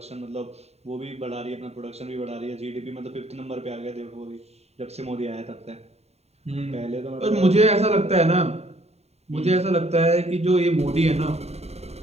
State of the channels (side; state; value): left; late; 0.31 ms